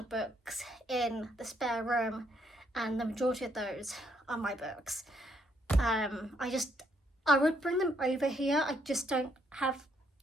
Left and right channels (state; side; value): normal; both; correlation 0.72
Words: of books in the spare room, and the majority of those are my books. I would bring them over here, I just don't have